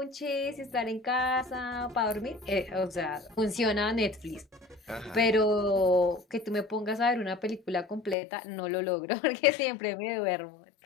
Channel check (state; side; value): drops out; right; at 8.2 s